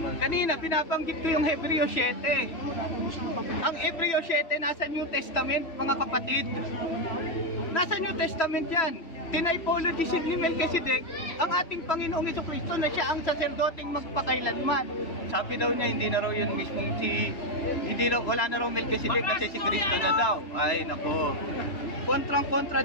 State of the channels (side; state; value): right; late; 3.0 ms